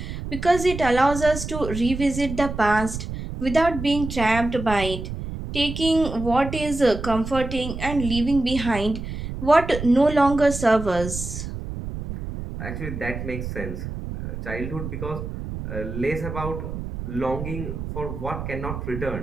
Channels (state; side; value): noise; right; rumble, 7 dB below the sound